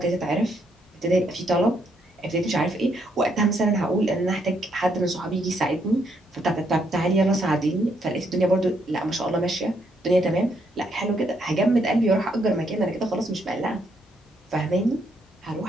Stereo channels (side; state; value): both; normal; correlation 0.74